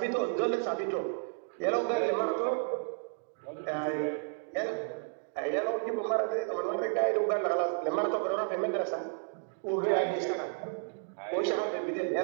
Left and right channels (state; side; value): silent; left; digital silence